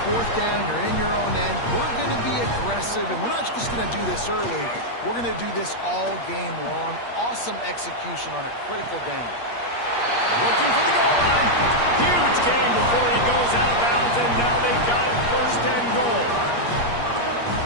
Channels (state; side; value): late; right; 8.5 ms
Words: fourth down, you're in your own end. We're going to be aggressive, and we're not just going to do this early. We're going to do this all game long. Awesome execution on a critical down. Looking for the goal line. Huge game before he goes out of bounds, and now they've got it first and goal.